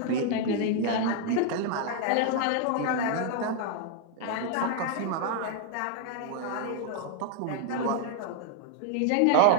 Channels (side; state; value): both; different; correlation 0.00